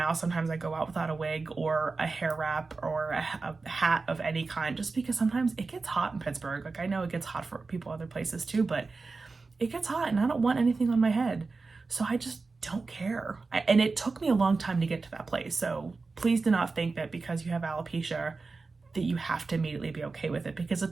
sometimes I go out without a wig or a hair wrap or a hat of any kind, just because sometimes it gets hot in Pittsburgh. Like, I know it gets hot for people other places too, but it gets hot and I don't want anything on my head. So I just don't care. And it took me a long time to get to that place. So please do not think that because you have alopecia that you have to immediately be okay with it, because it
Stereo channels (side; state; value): left; quieter; 4.0 dB